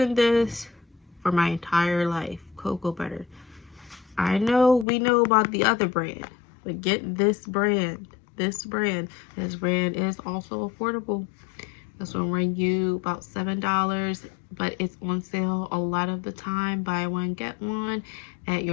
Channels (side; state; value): right; drops out; at 4.9 s